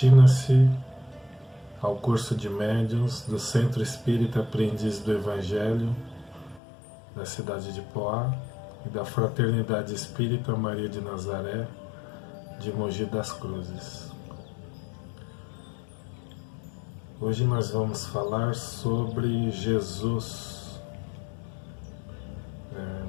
ao curso de médiuns do Centro Espírita Aprendiz do Evangelho da cidade de Poá e da Fraternidade Espírita Maria de Nazaré de Mogi das Cruzes. Hoje nós vamos falar sobre Jesus.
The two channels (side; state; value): right; drops out; at 6.6 s